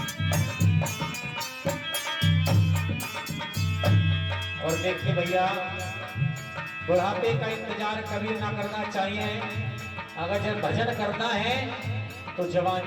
और देखिए भैया, बुढ़ापे का इंतजार कभी ना करना चाहिए। अगर जब भजन करना है तो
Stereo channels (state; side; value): identical; both; correlation 1.00